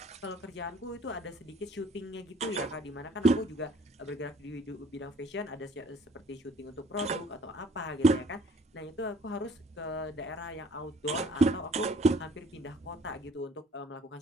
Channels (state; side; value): normal; both; correlation 0.58